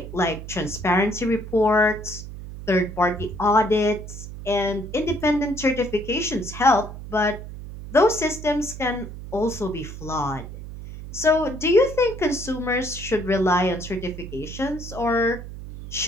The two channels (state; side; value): noise; right; hum, 11 dB below the sound